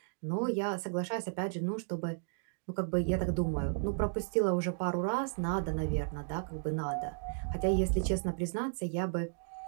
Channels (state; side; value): silent; left; digital silence